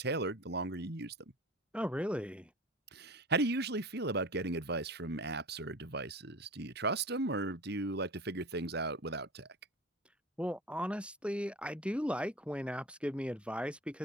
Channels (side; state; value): both; normal; correlation 0.34